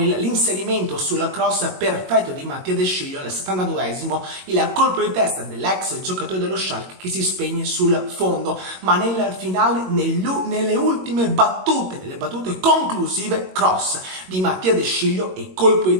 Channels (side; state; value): left; late; 22 ms